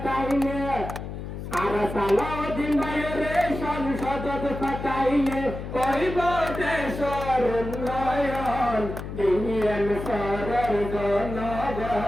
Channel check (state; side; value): noise; left; hum, 8 dB below the sound